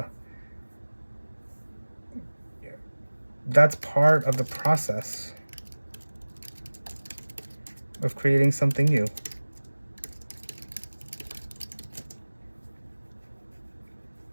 That's part of the process of creating something new.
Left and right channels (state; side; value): inverted; both; correlation -1.00